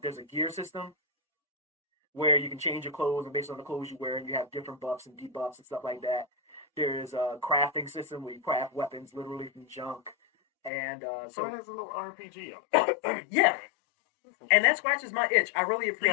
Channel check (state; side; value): drops out; right; at 10.7 s